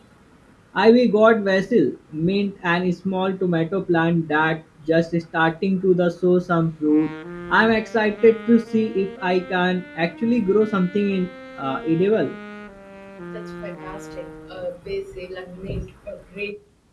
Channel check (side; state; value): both; identical; correlation 1.00